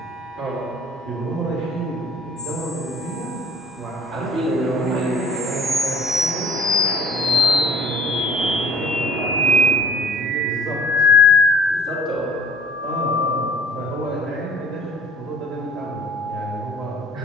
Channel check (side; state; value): both; normal; correlation 0.51